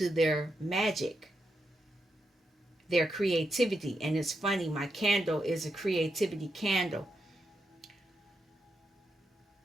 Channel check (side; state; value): both; normal; correlation 0.84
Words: their magic, their creativity. And it's funny, my candle is a creativity candle.